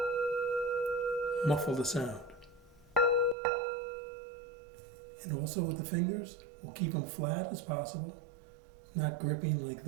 muffle the sound. And also with the fingers, we'll keep them flat as possible, not gripping like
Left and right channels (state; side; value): drops out; left; at 3.4 s